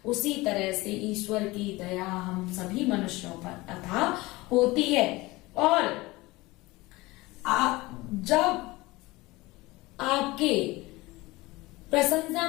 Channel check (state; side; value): quieter; right; 21.0 dB